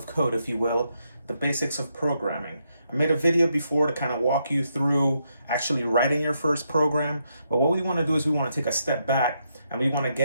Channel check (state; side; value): inverted; both; correlation -0.79